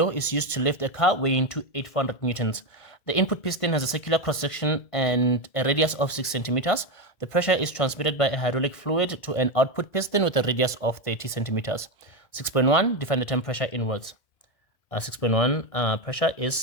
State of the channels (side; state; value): right; late; 1.5 ms